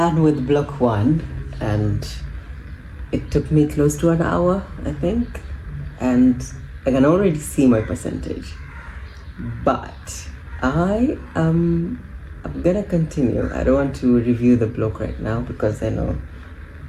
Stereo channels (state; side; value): identical; both; correlation 1.00